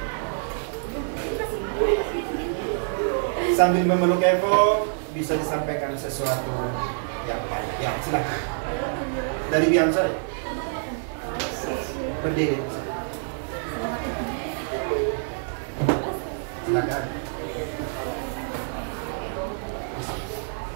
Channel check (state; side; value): silent; left; digital silence